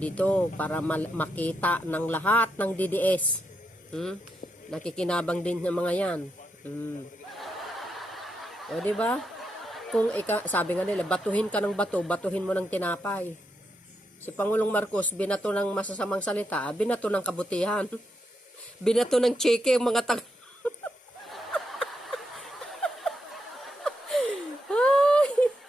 para makita ng lahat ng DDS. Nakikinabang din ng mga yan. Diba? Kung sabi nga nila, batuhin ka ng bato, batuhin mo ng tinapay. Si Pangulong Marcos, binato ng masasamang salita, binato ng kabutihan. Binato ng Chique, mga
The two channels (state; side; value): normal; both; correlation 0.82